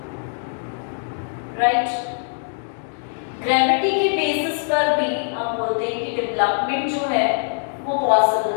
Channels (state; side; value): silent; right; digital silence